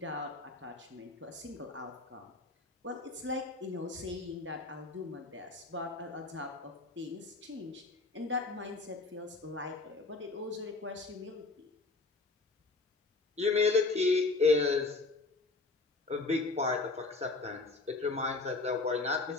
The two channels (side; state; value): right; quieter; 3.5 dB